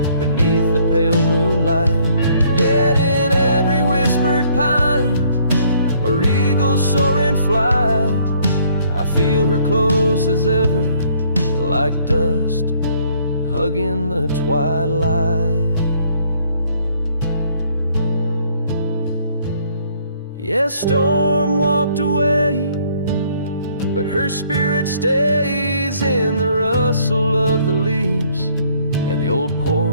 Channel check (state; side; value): inverted; both; correlation -0.63